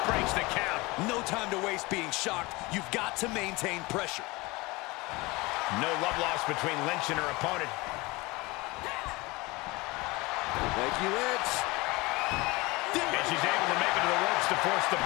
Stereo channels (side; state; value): right; quieter; 23.2 dB